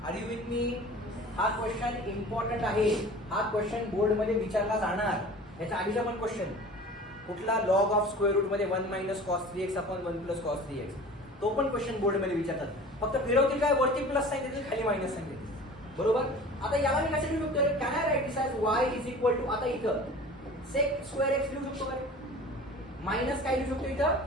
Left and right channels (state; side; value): normal; both; correlation 0.41